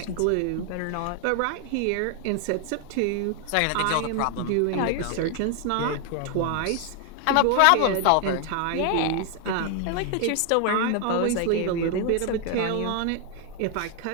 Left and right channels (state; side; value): different; both; correlation 0.00